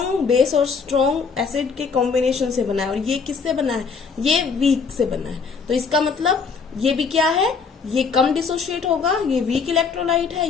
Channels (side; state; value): right; quieter; 5.4 dB